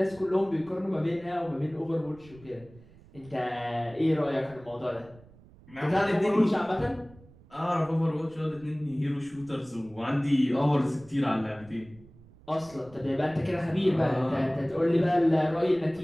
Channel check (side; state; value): right; noise; rumble, 24 dB below the sound